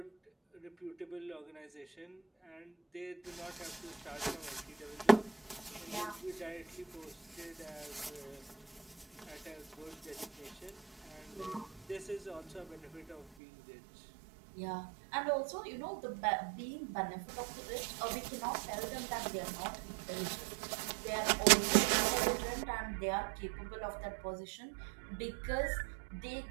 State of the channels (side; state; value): left; drops out; at 13.2 s